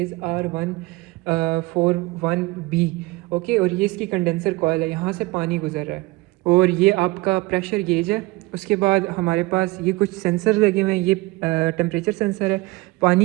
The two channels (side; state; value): left; quieter; 22.3 dB